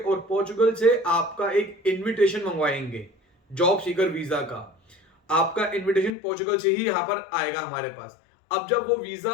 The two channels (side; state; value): right; drops out; at 6.1 s